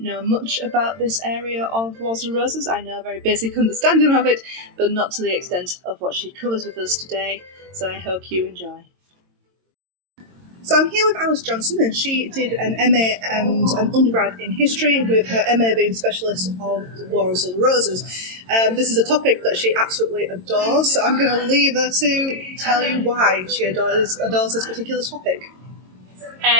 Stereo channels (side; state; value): left; late; 22 ms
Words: know much about this area of Wars of the Roses. I know a very basic understanding of it, but not to the extent of what she covers with us today, so I hope you enjoy. So I'm here with Alice Johnson, and she did an MA and an undergrad in history, with her MA being specialist of the Wars of the Roses. This is a topic that she absolutely adores, so I'm going to leave her to tell you why she adores this particular topic.